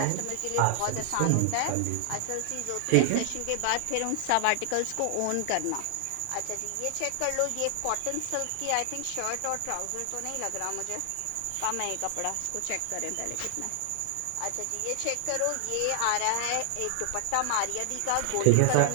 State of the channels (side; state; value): both; different; correlation 0.00